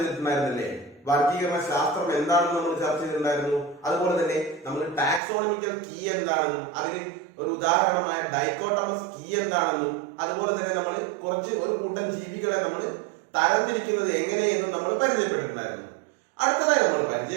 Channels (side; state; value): left; drops out; at 5.2 s